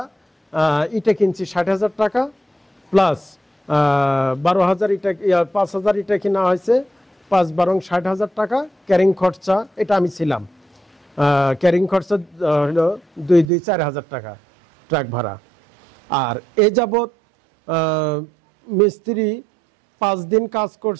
ইটা কিনছি 60,000 টাকা, প্লাস 12,000 ইটা, 5,000 ইটা কিনা হয়েছে, 5-12 60,000 টাকা। ক্যারিং খরচা, এটা আমি ছিলাম, ক্যারিং খরচা হলো 2-4,000 টাকা ট্রাক ভাড়া। আর এ যাবৎ মিস্ত্রি 5 দিন কাজ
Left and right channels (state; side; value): drops out; left; at 13.5 s